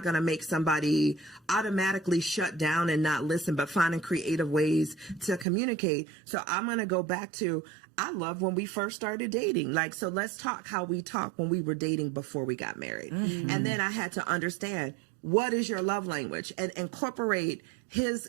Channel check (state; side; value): drops out; left; at 5.5 s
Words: going to make somebody automatically shut down and not listen, but finding creative ways to communicate. So I'm going to go back to, I love when we first started dating. Like, so let's talk how we talked when we were dating before we got married. And then I had to understand, what is your love language, and incorporate his